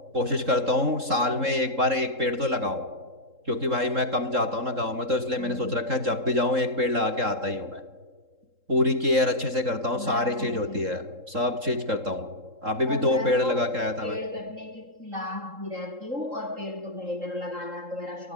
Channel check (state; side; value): late; left; 3.7 ms